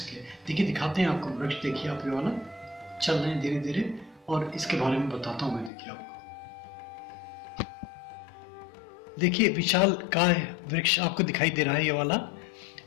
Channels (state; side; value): drops out; right; at 5.7 s